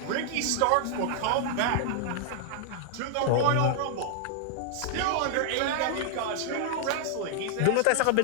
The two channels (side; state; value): both; different; correlation 0.00